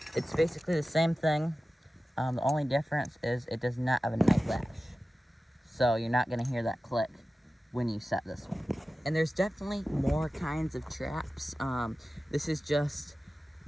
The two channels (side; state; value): both; normal; correlation 0.95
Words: It's basically the same thing. The only difference is it does not have a night latch. So you're not gonna hear that click when you set this one. And there's definitely more kinds of traps. This is just,